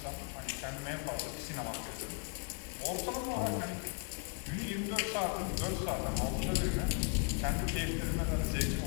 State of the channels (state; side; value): quieter; right; 37.1 dB